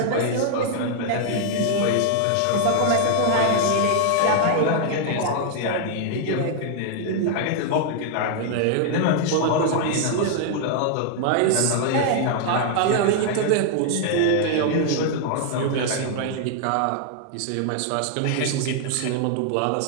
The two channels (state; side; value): different; both; correlation 0.00